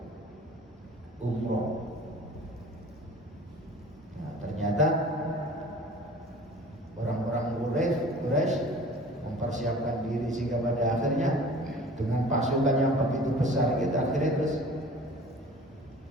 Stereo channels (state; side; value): normal; both; correlation 0.45